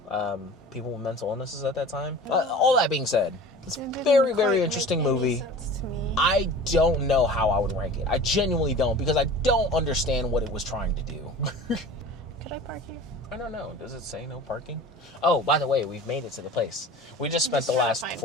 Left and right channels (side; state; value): both; normal; correlation 0.39